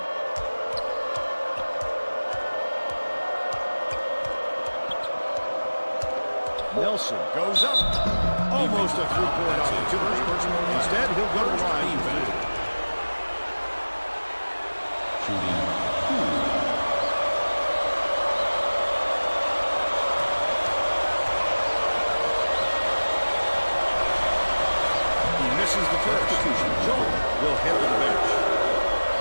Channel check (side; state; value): both; inverted; correlation -1.00